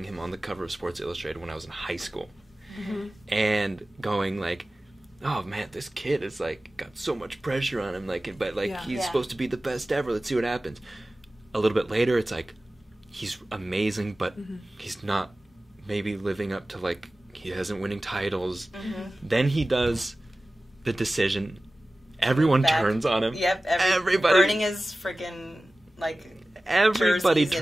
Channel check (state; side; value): normal; both; correlation 0.97